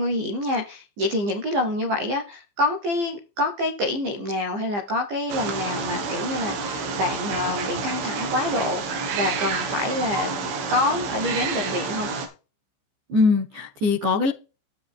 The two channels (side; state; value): left; late; 15 ms